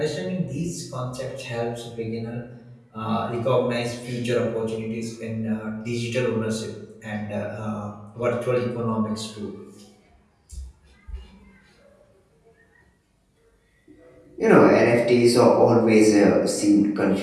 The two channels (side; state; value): both; identical; correlation 1.00